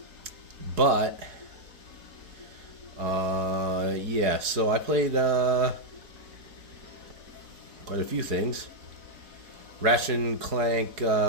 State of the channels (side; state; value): left; late; 4.7 ms